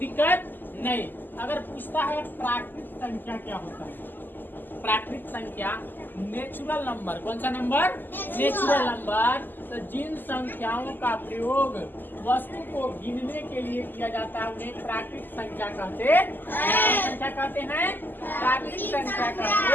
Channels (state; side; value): late; right; 0.091 ms